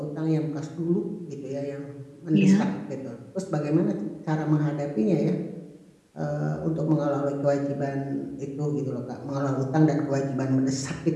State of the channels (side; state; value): both; identical; correlation 1.00